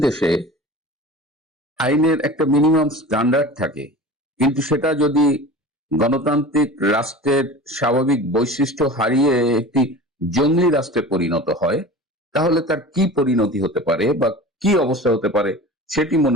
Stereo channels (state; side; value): normal; both; correlation 0.36